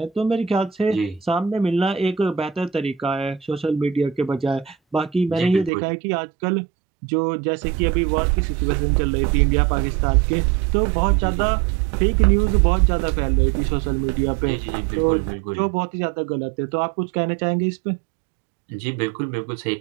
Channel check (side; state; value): left; drops out; at 5.7 s